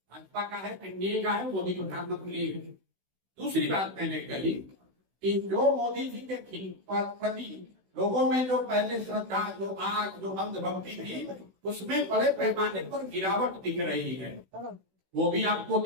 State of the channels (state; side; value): late; left; 16 ms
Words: भाजपा का है, एनडीए का है, मोदी प्रधानमंत्री है। दूसरी बात मैंने कही कि जो मोदी जी के प्रति लोगों में जो पहले श्रद्धा, जो आग, जो अंधभक्ति थी, उसमें बड़े पैमाने पर गिरावट दिख रही है, वो भी आपको